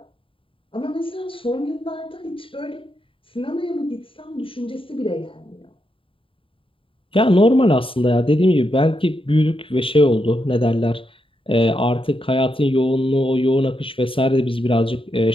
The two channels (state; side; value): late; right; 0.26 ms